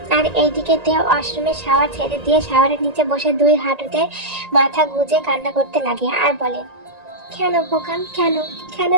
আর এইদিকে তে ওয়াশরুমে শাওয়ার ছেড়ে দিয়ে শাওয়ারের নিচে বসে দুই হাঁটুতে মাথা গুজে কান্না করতে লাগে আর বলে, কেন বোকাম, কেন কেন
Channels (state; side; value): late; left; 1.9 ms